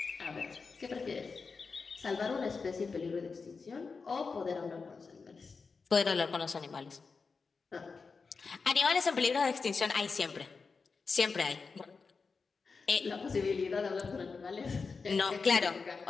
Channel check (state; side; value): quieter; right; 4.8 dB